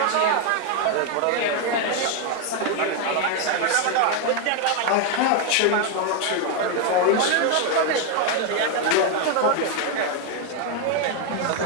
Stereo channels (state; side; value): different; both; correlation 0.01